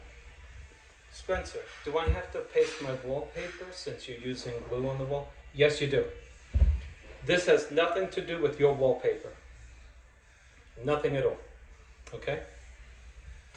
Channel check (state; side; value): identical; both; correlation 1.00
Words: Spencer, do I have to paste my wallpaper since you're using glue on the wall? Yes, you do. This has nothing to do with your wallpaper. Nothing at all. Okay?